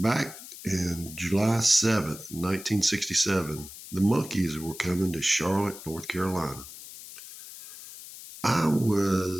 in July 7th, 1967, the Monkees were coming to Charlotte, North Carolina. I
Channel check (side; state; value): left; noise; hiss, 14 dB below the sound